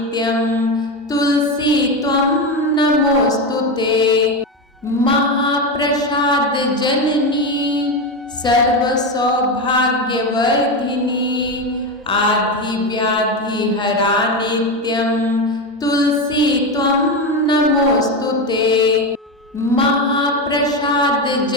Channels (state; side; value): normal; both; correlation 0.15